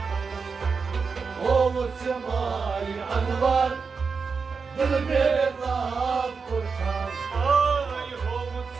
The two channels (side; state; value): left; quieter; 5.2 dB